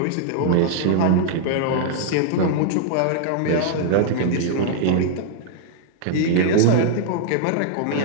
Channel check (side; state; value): both; different; correlation -0.01